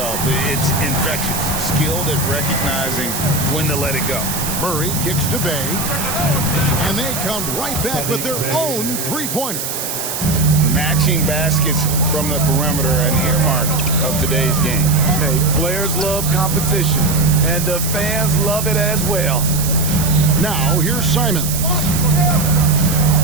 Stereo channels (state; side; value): noise; right; hiss, 4 dB below the sound